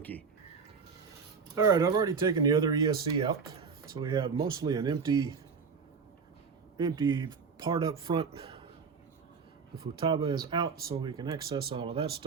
All right, I've already taken the other ESC out. So we have mostly an empty part up front. The futaba is out, so we can access all of that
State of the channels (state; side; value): quieter; left; 5.5 dB